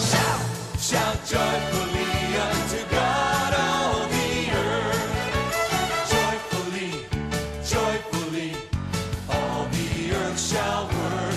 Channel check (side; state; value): both; identical; correlation 1.00